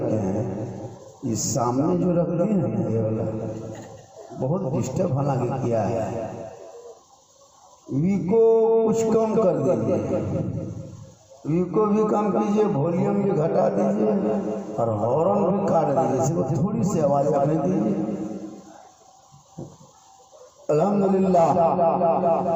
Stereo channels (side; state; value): both; identical; correlation 1.00